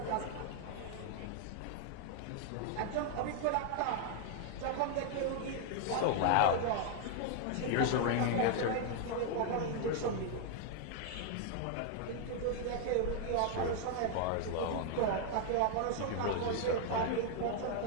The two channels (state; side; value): different; both; correlation 0.00